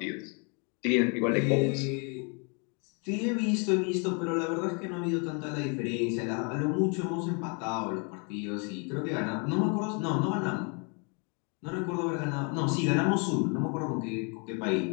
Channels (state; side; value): quieter; right; 35.7 dB